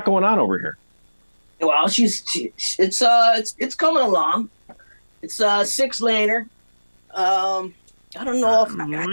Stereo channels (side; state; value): both; inverted; correlation -1.00